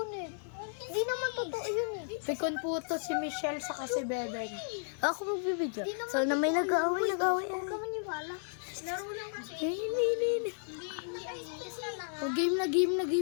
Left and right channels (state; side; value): silent; right; digital silence